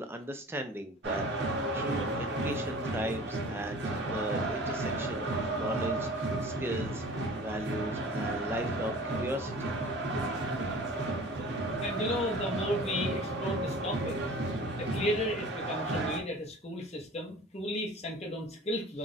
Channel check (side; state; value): both; normal; correlation 0.43